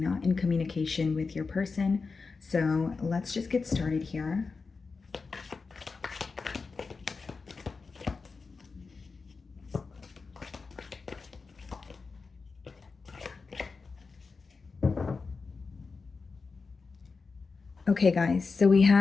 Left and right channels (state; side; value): quieter; right; 4.5 dB